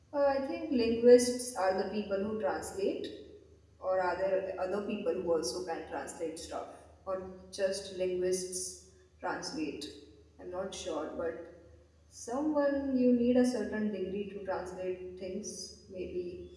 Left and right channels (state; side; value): identical; both; correlation 1.00